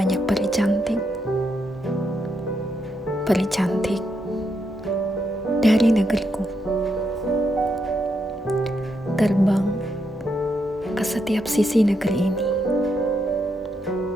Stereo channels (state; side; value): normal; both; correlation 0.81